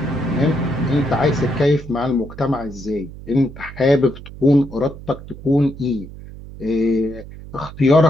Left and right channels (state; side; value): noise; right; hum, 15 dB below the sound